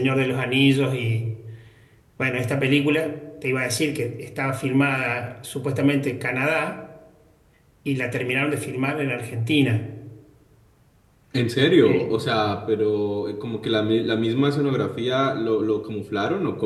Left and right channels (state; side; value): identical; both; correlation 1.00